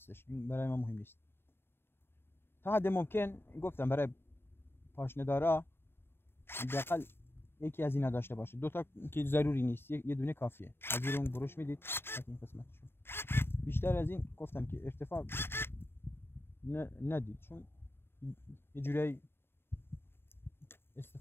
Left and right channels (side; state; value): right; late; 0.11 ms